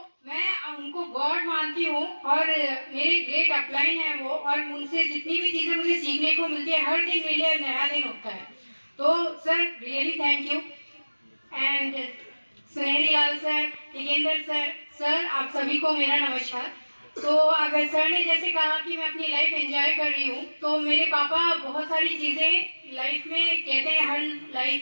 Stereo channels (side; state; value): both; inverted; correlation -1.00